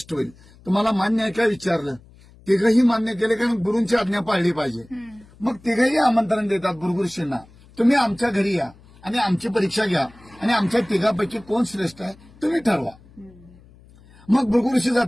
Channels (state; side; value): noise; left; hum, 25 dB below the sound